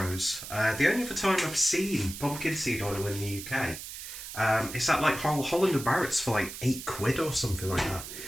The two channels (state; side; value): noise; right; hiss, 10 dB below the sound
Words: The only other time I've seen pumpkin seed oil in the UK. It's at like Holland and Barrett's for like £8 or something like that,